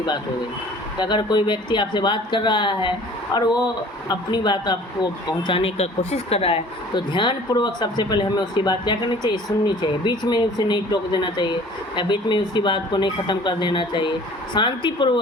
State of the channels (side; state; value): both; normal; correlation 0.49